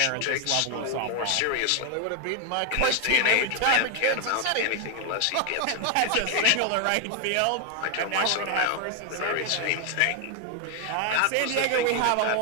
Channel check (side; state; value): both; different; correlation 0.01